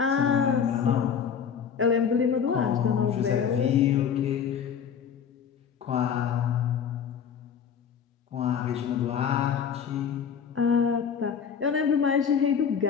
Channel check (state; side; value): quieter; right; 7.4 dB